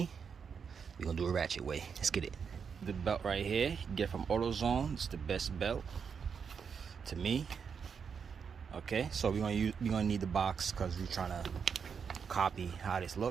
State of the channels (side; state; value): left; quieter; 6.4 dB